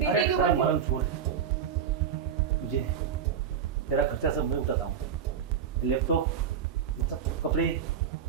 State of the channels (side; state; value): left; quieter; 7.8 dB